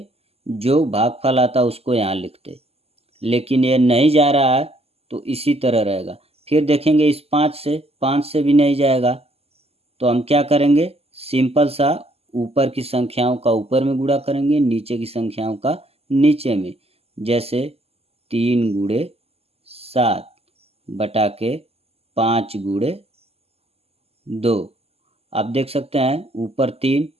जो भागफल आता उसको यहाँ लिखते, लेकिन ये नहीं जा रहा है तो इसी तरह रहेगा। फिर देखेंगे इस 5 से भी नहीं जाएगा, तो हम क्या करेंगे, सिंपल सा ऊपर की संख्याओं का ऊपर में गुणा करेंगे, नीचे की संख्याओं का नीचे में। जैसे 3 गुणे 7 बटा के 5 गुणे 2। आप देख सकते हैं ऊपर 3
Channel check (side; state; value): left; late; 0.29 ms